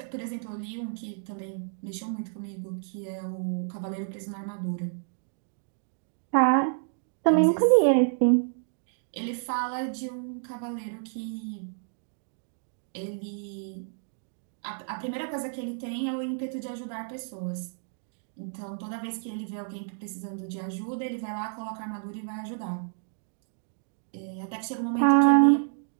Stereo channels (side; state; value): left; silent; digital silence